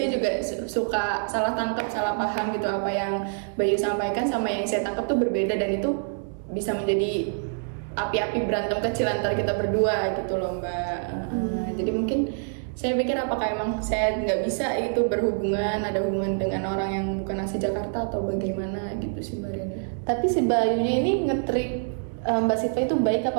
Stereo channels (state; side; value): silent; left; digital silence